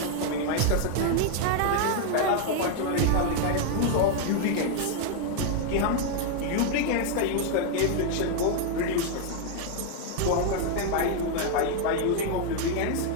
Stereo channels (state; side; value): different; both; correlation 0.00